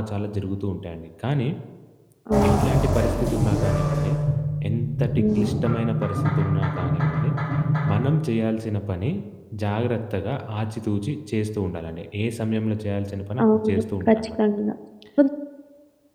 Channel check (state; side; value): identical; both; correlation 1.00